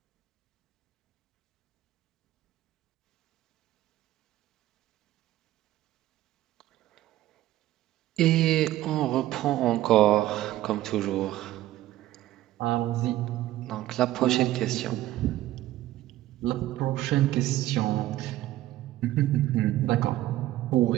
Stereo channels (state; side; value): quieter; left; 14.9 dB